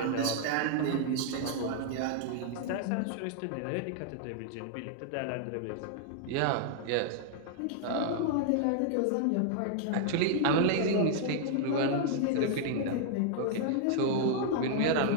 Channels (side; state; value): both; different; correlation -0.01